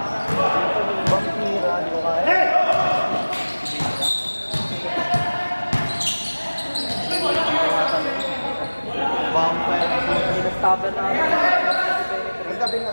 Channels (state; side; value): inverted; both; correlation -1.00